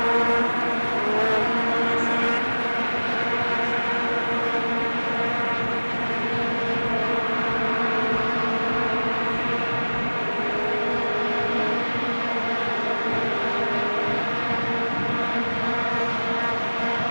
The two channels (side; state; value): both; inverted; correlation -1.00